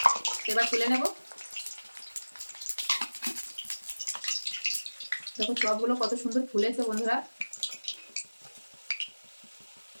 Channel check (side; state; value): both; inverted; correlation -1.00